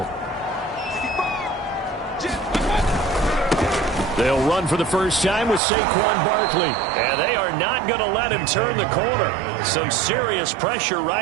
They'll run for the first time with Saquon Barkley. And they are not going to let him turn the corner. Some serious pressure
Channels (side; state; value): left; drops out; at 5.6 s